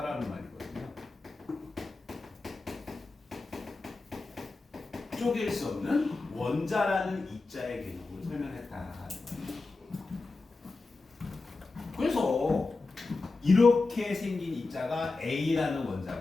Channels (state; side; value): quieter; right; 3.6 dB